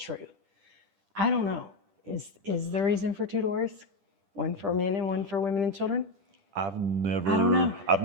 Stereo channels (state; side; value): late; left; 10 ms